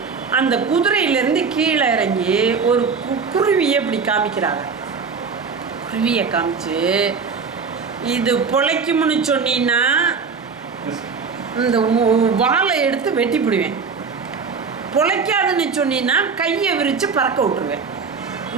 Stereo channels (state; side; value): quieter; left; 5.4 dB